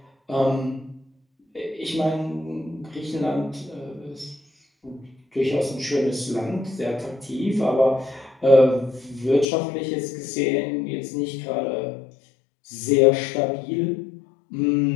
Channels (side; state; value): right; drops out; at 9.5 s